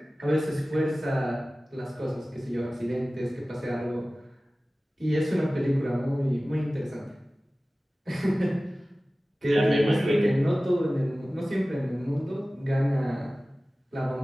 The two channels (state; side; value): normal; both; correlation 0.97